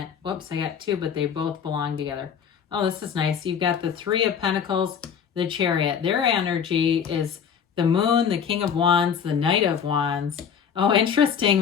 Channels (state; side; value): quieter; right; 7.5 dB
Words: Whoops, I got 2, but they both belong together. Oh, this is nice. You've got the 3 of Pentacles, the Chariot. Their energy is the Moon, the King of Wands, the Knight of Wands. Oh, interesting.